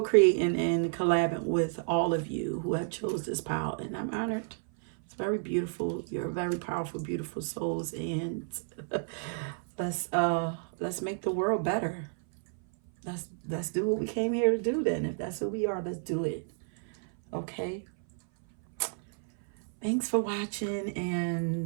and collabing with all of you who have chose this power, and I'm honored. It's very beautiful. You're very powerful, beautiful souls, and let's make the world better. Let's do what we came here to do then. If that's who we are, let's do it. Okay? Thanks for watching,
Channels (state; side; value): silent; left; 57 dB below the other